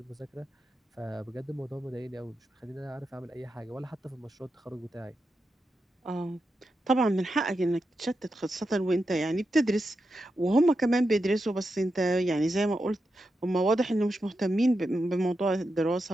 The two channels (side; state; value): both; normal; correlation 0.88